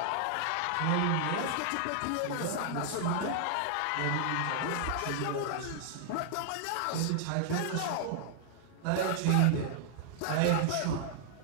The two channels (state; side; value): different; both; correlation 0.00